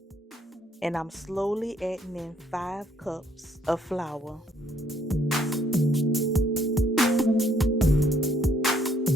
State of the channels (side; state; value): both; normal; correlation 0.67